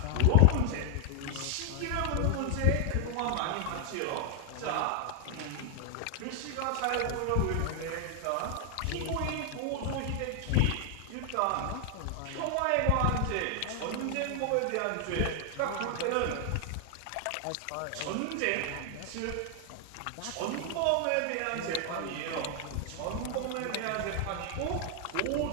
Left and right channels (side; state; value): both; different; correlation 0.00